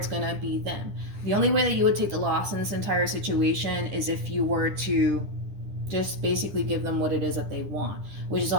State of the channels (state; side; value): late; left; 10 ms